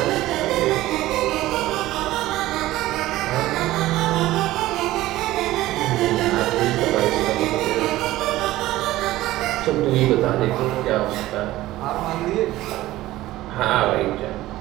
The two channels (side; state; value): left; quieter; 16.3 dB